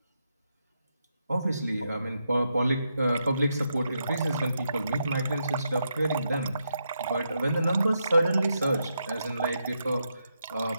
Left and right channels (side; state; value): both; inverted; correlation -0.83